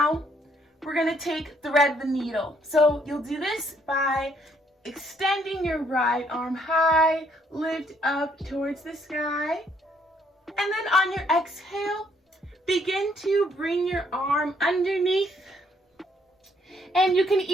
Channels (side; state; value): both; normal; correlation 0.68